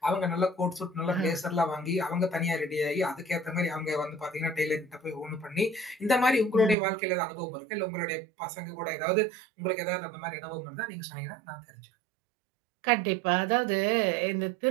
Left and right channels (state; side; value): drops out; left; at 6.8 s